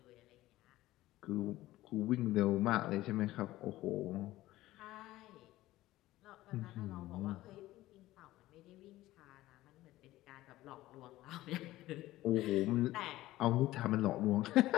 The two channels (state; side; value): quieter; right; 16.4 dB